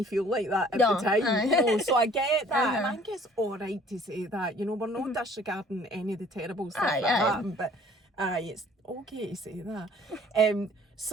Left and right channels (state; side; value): normal; both; correlation 0.55